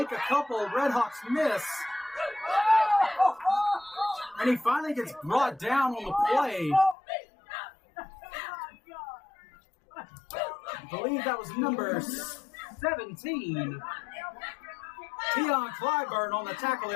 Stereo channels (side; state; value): right; drops out; at 7.0 s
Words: a couple Red Hawks miss. And he finally gets brought down on the play. I believe that was number 17. Tion Clyburn on the tackle